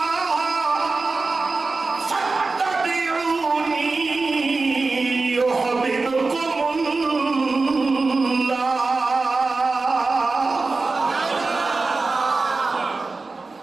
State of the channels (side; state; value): left; quieter; 3.8 dB